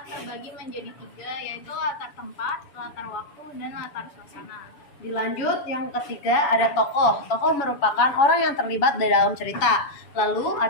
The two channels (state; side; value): late; right; 7.0 ms